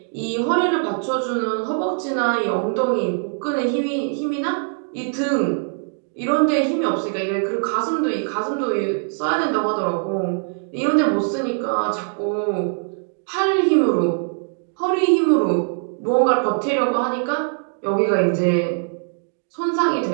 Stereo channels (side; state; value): left; silent; digital silence